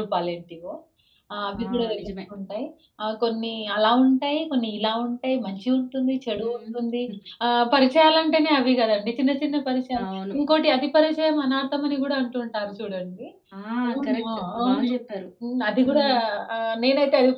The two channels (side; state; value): both; identical; correlation 1.00